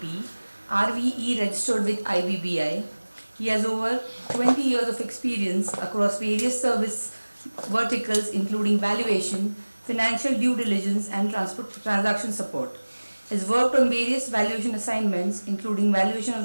RVE registered with IBBI. He has over 20 years of experience across various service verticals including valuation, financial due diligence and transaction support. He has worked on various valuation assignments including valuation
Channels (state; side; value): inverted; both; correlation -1.00